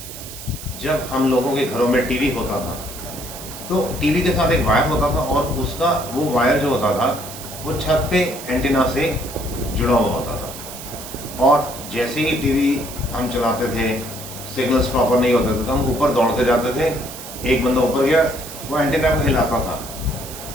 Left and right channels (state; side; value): noise; right; hiss, 12 dB below the sound